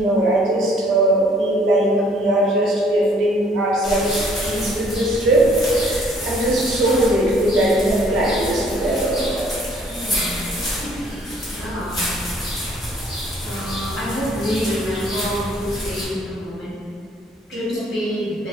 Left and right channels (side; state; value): both; normal; correlation 0.60